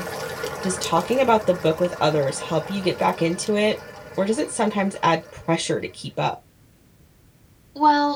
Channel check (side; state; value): both; identical; correlation 1.00